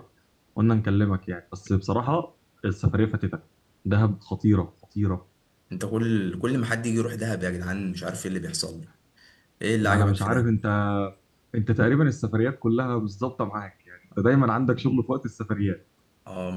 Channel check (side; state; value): both; identical; correlation 1.00